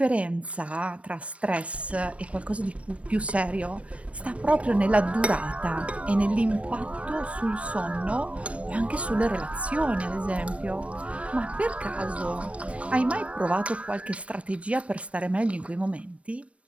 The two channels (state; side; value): late; left; 0.064 ms